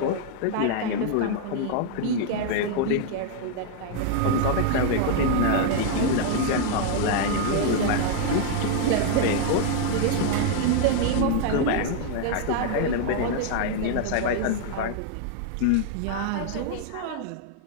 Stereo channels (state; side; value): different; both; correlation 0.00